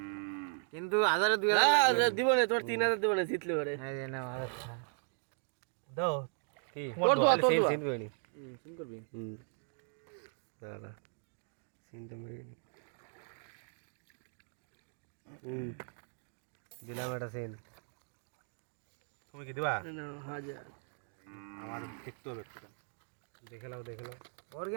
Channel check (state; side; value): silent; left; 53 dB below the other